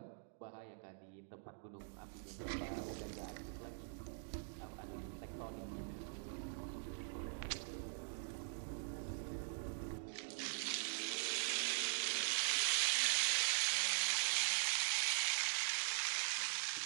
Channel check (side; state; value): left; silent; digital silence